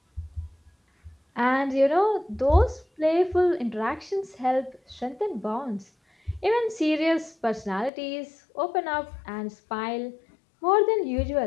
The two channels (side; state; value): right; drops out; at 7.9 s